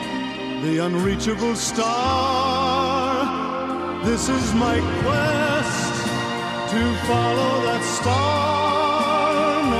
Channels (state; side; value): identical; both; correlation 1.00